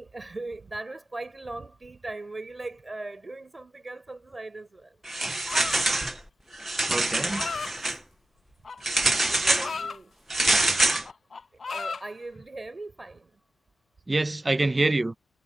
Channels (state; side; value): normal; both; correlation 0.94